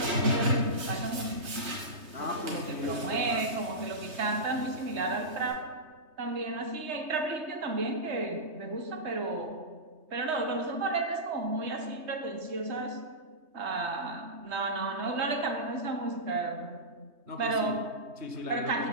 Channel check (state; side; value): late; left; 3.2 ms